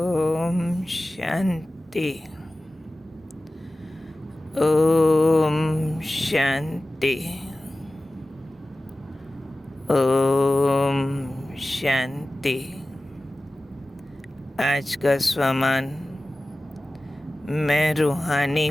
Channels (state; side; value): normal; both; correlation 0.96